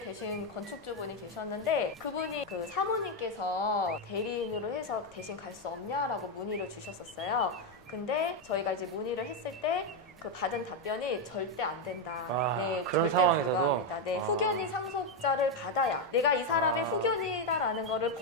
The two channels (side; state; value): left; noise; rumble, 27 dB below the sound